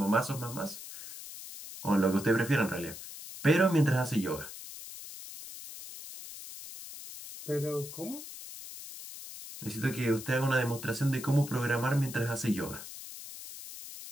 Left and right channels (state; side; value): noise; left; hiss, 12 dB below the sound